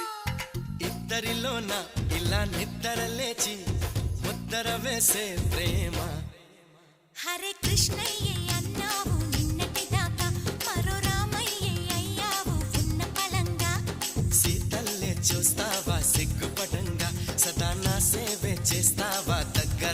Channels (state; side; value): identical; both; correlation 1.00